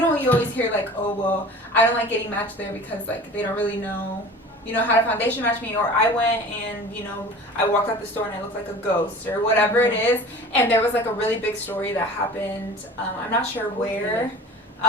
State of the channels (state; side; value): normal; both; correlation 0.40